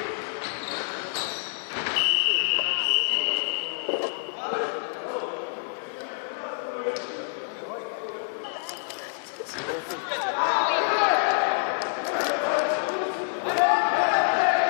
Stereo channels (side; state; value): right; silent; 60 dB below the other